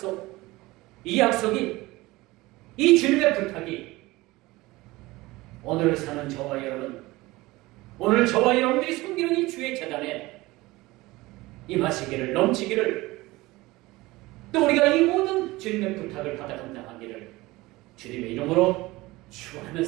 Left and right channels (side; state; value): left; quieter; 20.2 dB